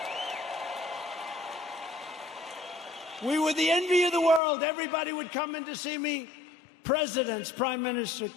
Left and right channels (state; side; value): drops out; right; at 4.4 s